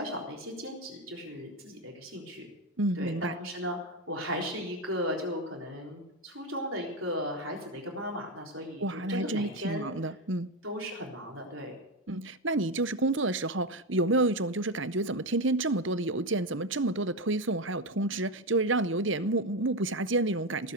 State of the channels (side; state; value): both; normal; correlation 0.12